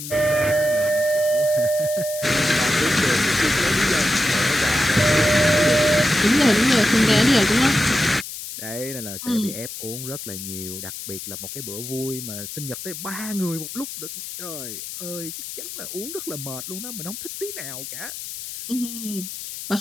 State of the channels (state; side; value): noise; left; hiss, 9 dB below the sound